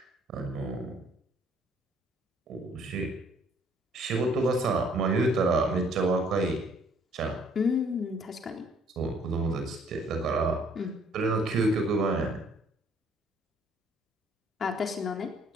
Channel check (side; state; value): both; normal; correlation 0.61